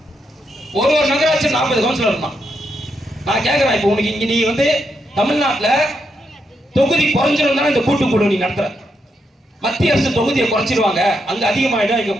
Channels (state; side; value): normal; both; correlation 0.81